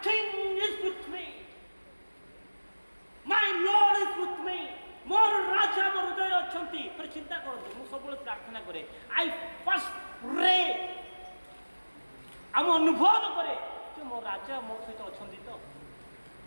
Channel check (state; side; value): inverted; both; correlation -1.00